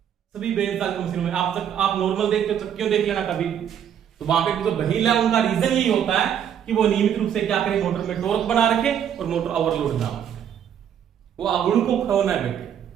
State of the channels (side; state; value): left; quieter; 9.0 dB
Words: सभी बेल्ट चालित मशीनों में। आप नॉर्मल देखते हो चक्कियों देख लेना कभी, तो वहां पे जो व्हील है उनका रीजन यही होता है कि वो नियमित रूप से क्या करें, मोटर में टॉर्क बना रखे और मोटर ओवरलोड ना हो, वो अगुण को खोना बैठे।